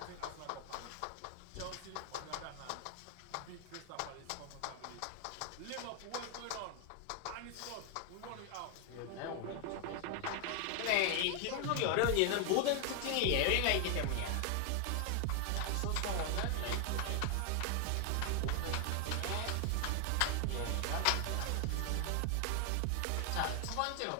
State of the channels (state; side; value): different; both; correlation 0.00